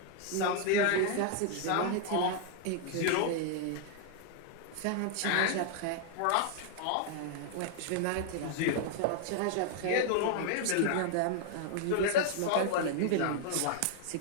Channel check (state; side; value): different; both; correlation 0.00